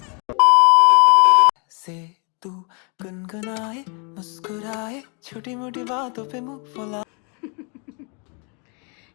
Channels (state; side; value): quieter; right; 35.2 dB